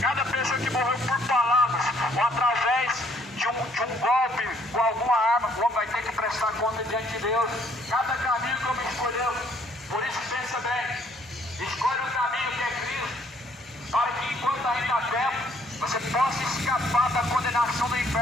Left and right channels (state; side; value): normal; both; correlation 0.64